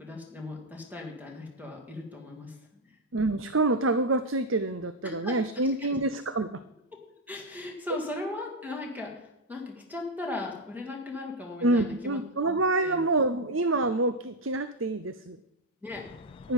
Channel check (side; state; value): both; normal; correlation 0.04